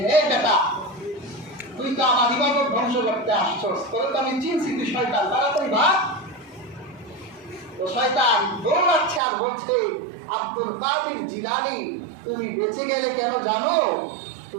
হে বেটা, তুই তো আমার ইবাদত ধ্বংস করতে আসছস, তোর তো আমি চিনছি তুই শয়তান, তাড়াতাড়ি ভাগ। তো শয়তান দৌড়াচ্ছে আর বলছে, আব্দুল কাদের জিলানী, তুমি বেঁচে গেলে কেন জানো?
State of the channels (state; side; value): drops out; left; at 9.2 s